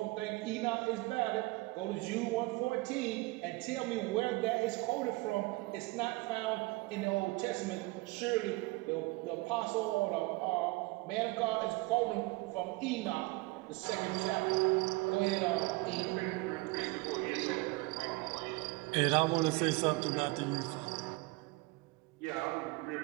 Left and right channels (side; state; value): left; quieter; 23.3 dB